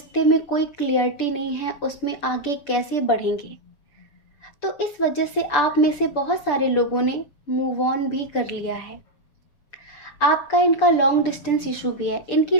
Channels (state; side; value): late; right; 6.9 ms